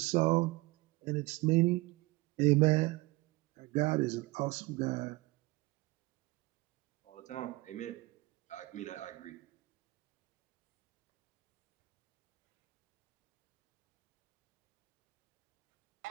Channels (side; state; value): left; quieter; 21.8 dB